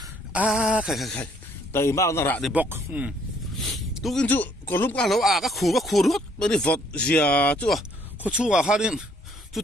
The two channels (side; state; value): both; normal; correlation 0.65